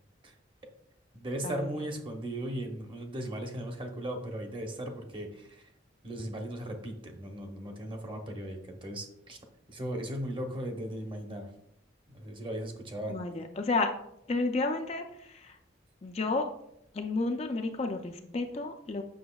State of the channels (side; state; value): both; normal; correlation 0.47